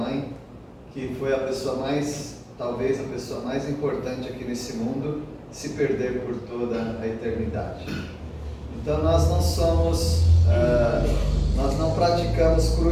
que foi a pessoa mais, talvez a pessoa mais importante aqui nesse mundo, se perder por toda a eternidade. Então nós não praticamos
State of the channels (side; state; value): both; identical; correlation 1.00